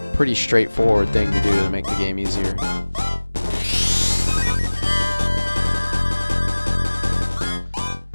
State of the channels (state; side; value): inverted; both; correlation -1.00